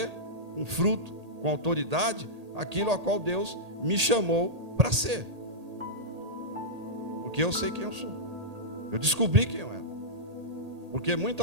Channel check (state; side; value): late; left; 1.8 ms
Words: com fruto, com autoridade, aquilo a qual Deus me chamou para ser. Porque eu sei quem eu sou. Eu descobri quem eu era. Porque